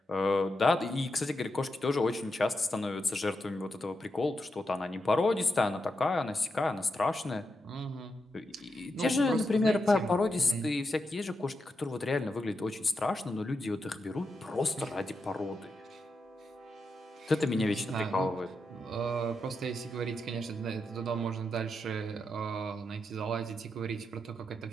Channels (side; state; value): both; normal; correlation 0.85